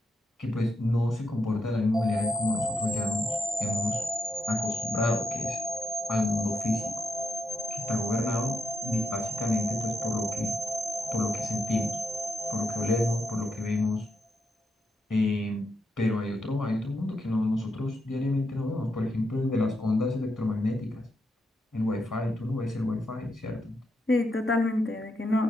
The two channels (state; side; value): normal; both; correlation 0.83